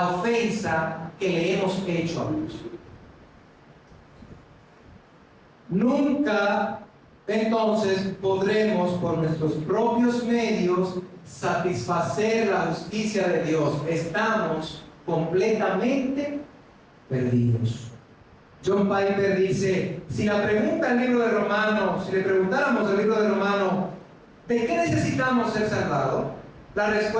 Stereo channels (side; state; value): both; identical; correlation 1.00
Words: ofensa que le hemos hecho a Dios. nunca entonces podremos por nuestros propios medios satisfacer la justicia de Dios. Estamos completamente perdidos. John Piper dice, si le preguntáramos al libro de Romanos, ¿de qué necesitamos ser salvados? La